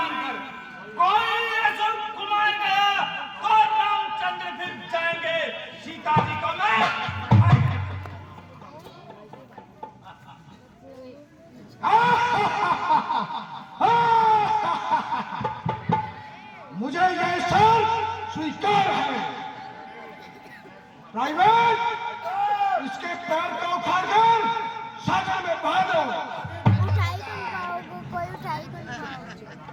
कोई असुर कुमार गया तो रामचंद्र फिर जाएंगे, सीता जी को मैं मुझे यह सर स्वीकार है। प्राइवेट, इसके पैर को उखाड़कर सागर में बहा दो। उठाई तो खाओगे, कोई उठाई तो खाओगे।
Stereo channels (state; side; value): identical; both; correlation 1.00